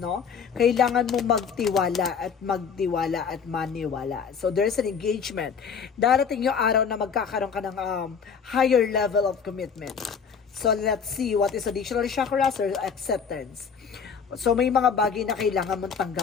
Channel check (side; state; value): right; quieter; 6.4 dB